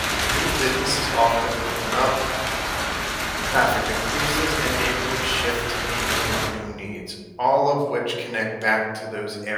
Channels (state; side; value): identical; both; correlation 1.00